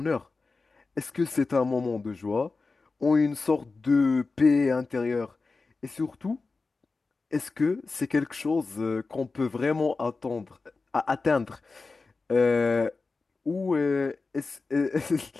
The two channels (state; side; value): quieter; right; 4.0 dB